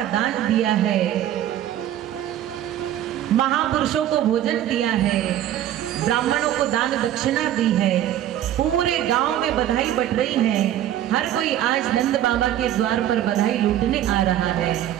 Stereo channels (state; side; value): quieter; left; 12.0 dB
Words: दान दिया है, महापुरुषों को भोजन दिया है, ब्राह्मणों को दान दक्षिणा दी है, पूरे गांव में बधाई बट रही है। हर कोई आज नंद बाबा के द्वार पर बधाई लूटने आ रहा है,